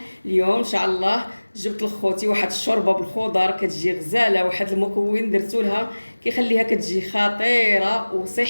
اليوم ان شاء الله جبت لخوتي واحد الشوربه بالخضر كتجي غزاله، واحد المكون درتو لها كيخليها كتجي خطيره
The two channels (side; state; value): both; inverted; correlation -1.00